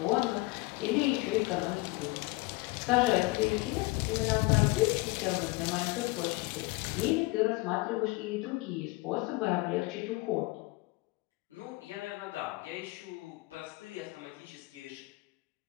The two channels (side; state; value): right; quieter; 22.7 dB